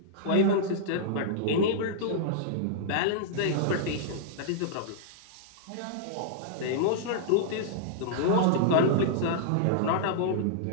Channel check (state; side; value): different; both; correlation -0.02